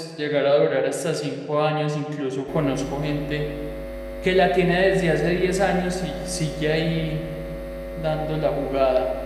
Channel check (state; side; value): identical; both; correlation 1.00